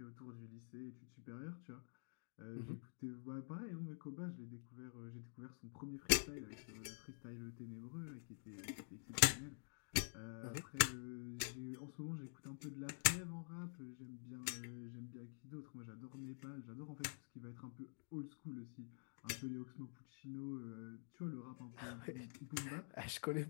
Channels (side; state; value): right; silent; digital silence